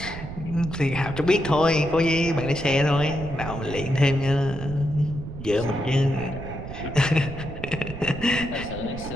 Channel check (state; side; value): noise; right; rumble, 10 dB below the sound